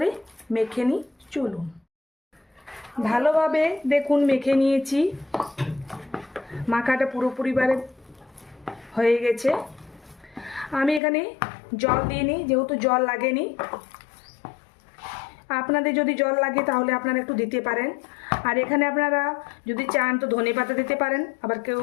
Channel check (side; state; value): right; drops out; at 11.0 s